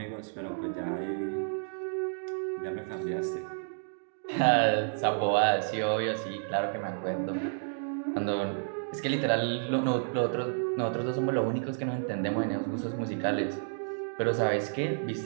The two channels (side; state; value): left; silent; digital silence